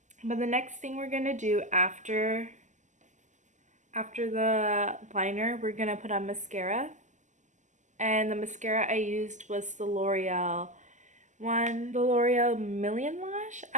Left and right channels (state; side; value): late; left; 0.35 ms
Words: the next thing we're gonna do after the liner, we're gonna put on mascara. And the mascara I used was the L'Oreal one, the L'Oreal Million Lash.